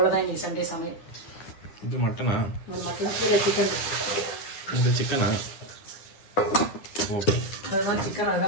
இன்னைக்கு சண்டே சமையல். இது மட்டனா? மட்டன் கீழே சிக்கன். இது சிக்கனா? ஓகே. அதுதான் சிக்கன்,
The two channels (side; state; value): right; late; 9.8 ms